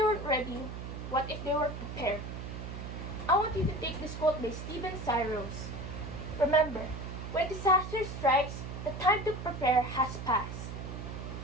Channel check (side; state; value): right; noise; hum, 8 dB below the sound